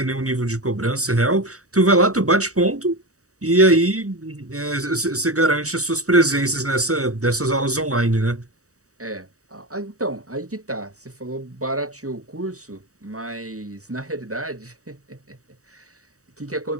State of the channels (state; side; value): late; left; 0.65 ms